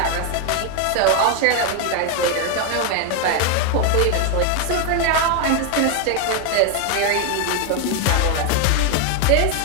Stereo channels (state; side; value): different; both; correlation 0.01